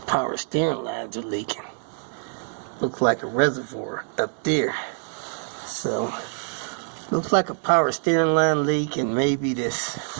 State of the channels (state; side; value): silent; left; digital silence